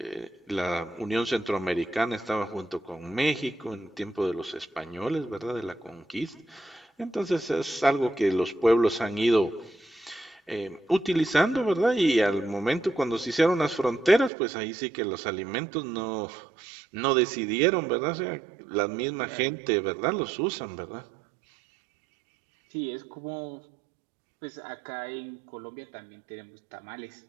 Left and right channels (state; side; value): drops out; left; at 14.3 s